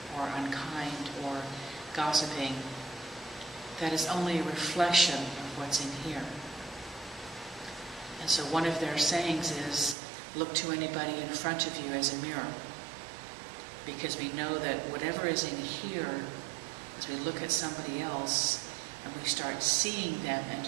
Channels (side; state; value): left; drops out; at 10.0 s